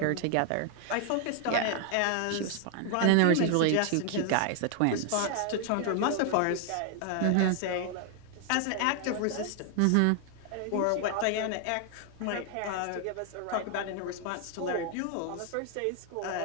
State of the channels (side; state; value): both; different; correlation 0.00